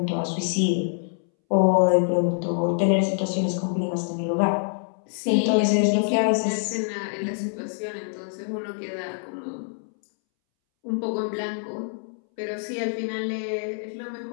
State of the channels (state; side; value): silent; right; 61 dB below the other